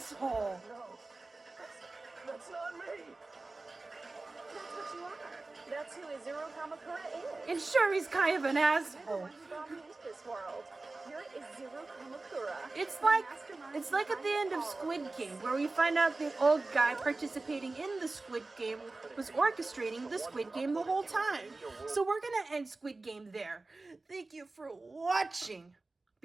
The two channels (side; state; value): left; quieter; 3.3 dB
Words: No, that's not me. That's what you are. That's who Izuru Kamukura is. And sure, he's kind of an You're the asshole. one who brought me into this world. You're Izuru Kamukura. It's the like mastermind at the end of behind all Squid this. Game, where we find out the old guy participating in the Squid Game was orchestrating the Squid Game the whole time. So we're gonna end Squid Game there. Thank you for watching.